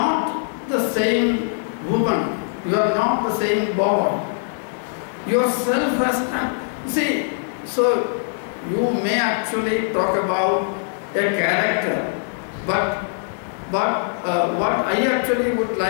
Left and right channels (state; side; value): silent; right; digital silence